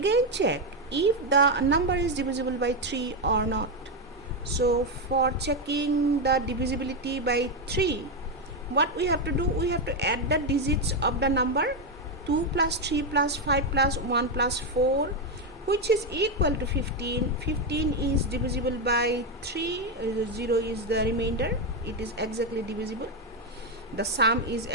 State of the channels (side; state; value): both; normal; correlation 0.06